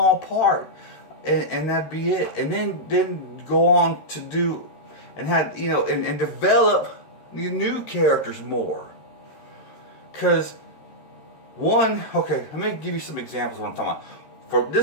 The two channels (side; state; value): right; late; 13 ms